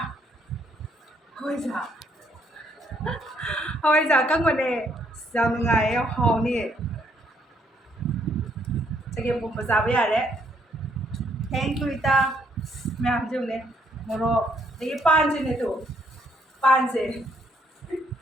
hawaiiza ꯑꯀꯪꯕꯅꯦ ꯌꯥꯝ ꯅꯨꯡꯉꯥꯏꯌꯦ ꯌꯥꯝ ꯍꯥꯎꯅꯤ ꯆꯒꯦꯝꯄꯣꯝꯕ ꯆꯥꯕ ꯌꯥꯔꯦ ꯊꯦꯡꯛ ꯌꯨ ꯏꯇꯥ ꯃꯌꯥꯝ ꯌꯦꯡꯉꯨꯅꯦ ꯃꯣꯔꯣꯛ ꯑꯗꯒꯤ ꯄꯥꯟꯁꯤꯅꯦ ꯇꯨ ꯄꯥꯟꯁꯦ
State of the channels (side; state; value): both; normal; correlation 0.70